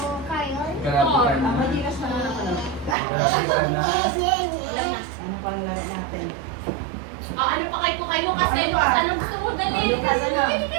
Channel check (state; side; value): drops out; left; at 3.0 s